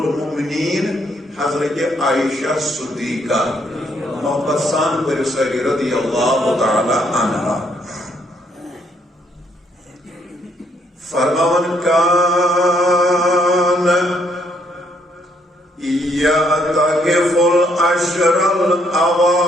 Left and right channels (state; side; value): normal; both; correlation 0.70